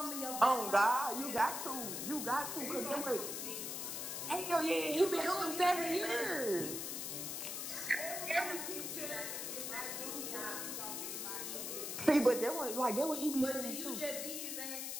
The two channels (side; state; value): left; noise; hiss, 4 dB below the sound